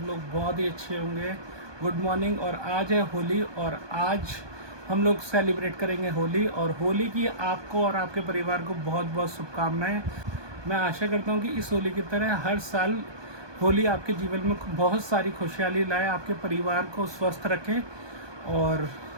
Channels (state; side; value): late; left; 1.2 ms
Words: लोग बहुत ही अच्छे होंगे। Good morning. और आज है होली और आज हम लोग सेलिब्रेट करेंगे होली। और होली की आपको और आपके परिवार को बहुत बहुत शुभकामनाएं। मैं आशा करता हूं कि इस होली की तरह हर साल होली आपके जीवन में बहुत सारी खुशहाली लाए, आपके परिवार को स्वस्थ रखे और